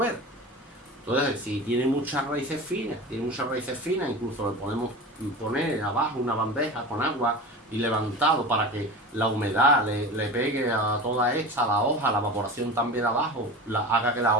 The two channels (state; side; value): normal; both; correlation 0.31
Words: Entonces, si tiene muchas raíces finas, incluso le podemos poner abajo una bandeja con agua y levantado para que la humedad le pegue a toda esta, a la hoja, la evaporación también abajo, haga que la